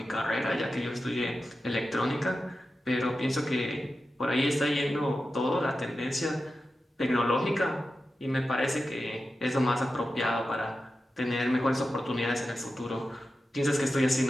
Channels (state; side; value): normal; both; correlation 0.92